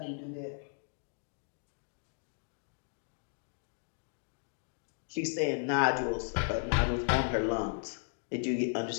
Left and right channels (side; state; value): right; silent; digital silence